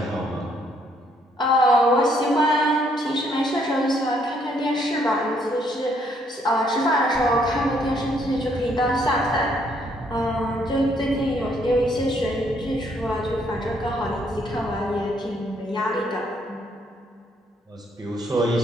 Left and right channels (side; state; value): both; normal; correlation 0.69